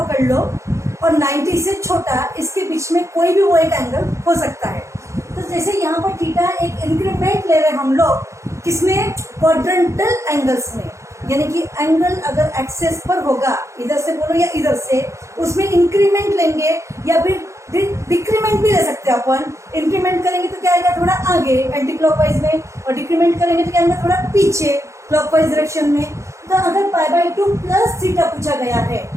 लो और 90 से छोटा, इसके बीच में कोई भी वो एक एंगल हो सकता है। तो जैसे यहाँ पर थीटा एक इंक्रीमेंट ले रहे हैं हम लोग, किसमें? क्वाड्रेंटल एंगल्स में। यानी कि एंगल अगर एक्सेस पर होगा, इधर से बोलो या इधर से, उसमें इंक्रीमेंट लेंगे या फिर डिक्रीमेंट भी ले सकते हैं अपन। इंक्रीमेंट करेंगे तो क्या आएगा? थोड़ा आगे एंटी क्लॉकवाइज में, और डिक्रीमेंट करेंगे तो क्या आएगा? थोड़ा पीछे क्लॉकवाइज डायरेक्शन में। तो अगर पाई बाई 2 प्लस थीटा पूछा गया है,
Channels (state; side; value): late; left; 0.14 ms